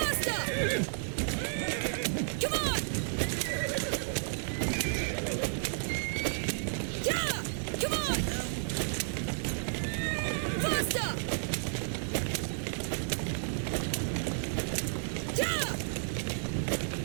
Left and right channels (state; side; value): silent; left; 56 dB below the other